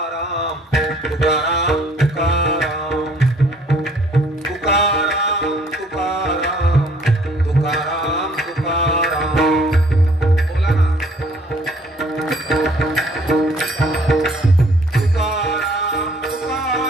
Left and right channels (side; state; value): both; normal; correlation 0.59